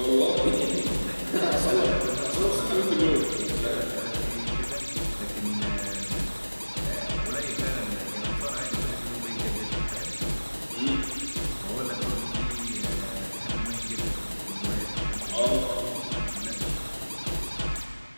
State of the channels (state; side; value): inverted; both; correlation -1.00